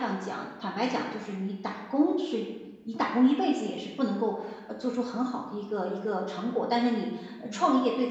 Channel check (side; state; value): both; identical; correlation 1.00